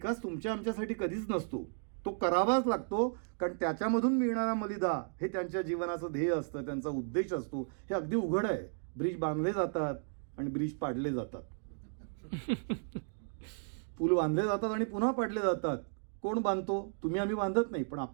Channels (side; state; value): left; silent; digital silence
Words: तुमच्या आमच्यासाठी कधीच नसतो, तो करावाच लागतो. कारण त्याच्यामधून मिळणारा मलिदा हे त्यांच्या जीवनाचं ध्येय असतं, त्यांचा उद्देश असतो. हे अगदी उघड आहे. ब्रिज बांधले जातात आणि ब्रिज पाडले जातात, पूल बांधले जातात आणि पुन्हा पाडले जातात. कोण बांधतो? तुम्ही आम्ही बांधत नाही, पण